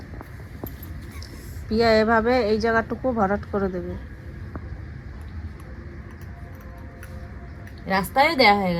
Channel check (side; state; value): both; identical; correlation 1.00